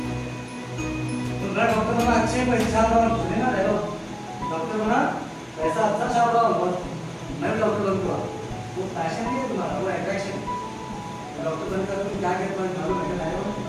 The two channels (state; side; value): identical; both; correlation 1.00